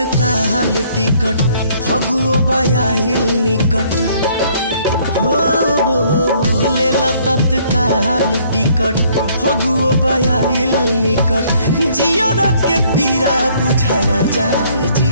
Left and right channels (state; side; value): inverted; both; correlation -0.63